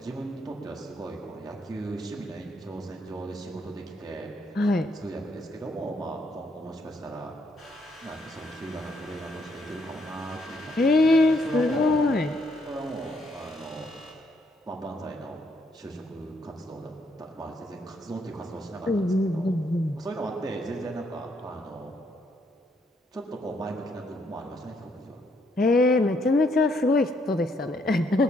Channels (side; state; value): both; normal; correlation 0.72